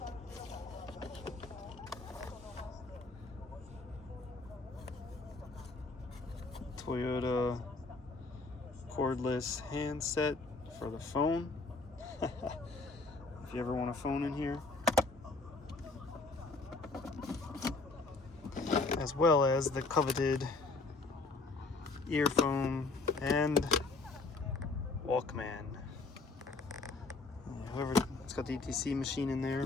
Toyota cordless handset for the phone. If you ever want a phone in here. As well as the coveted earphone and Walkman. Whoever, it's got the ETC machine in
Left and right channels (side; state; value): right; quieter; 3.6 dB